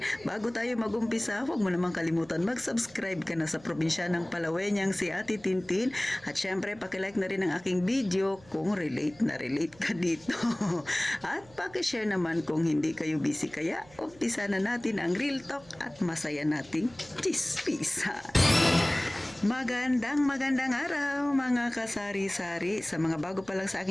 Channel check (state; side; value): noise; right; hum, 24 dB below the sound